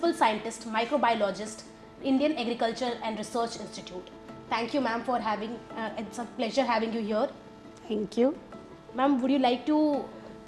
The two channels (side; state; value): both; identical; correlation 1.00